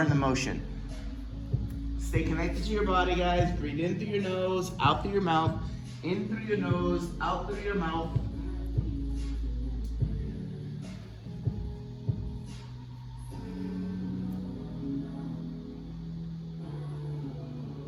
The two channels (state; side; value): identical; both; correlation 1.00